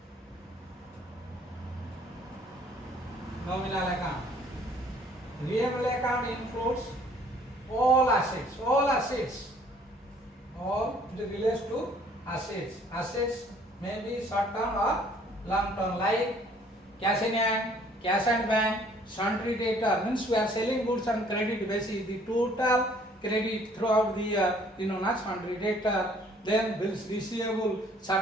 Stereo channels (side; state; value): both; normal; correlation 0.58